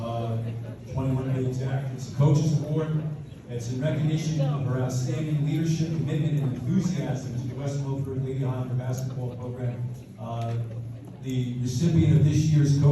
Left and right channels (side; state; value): both; identical; correlation 1.00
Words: 21 to be exact. It's a coach's award. It's in recognition of her outstanding leadership, commitment, and enthusiasm to the West Milford Lady Highlander basketball program. The recipient of this year's